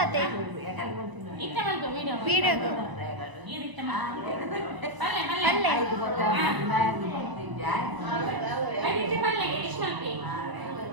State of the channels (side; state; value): left; late; 1.0 ms